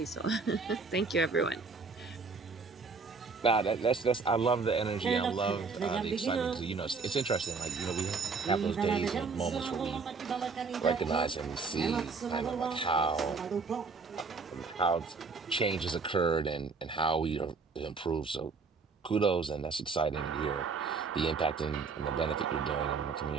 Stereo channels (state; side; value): quieter; left; 4.7 dB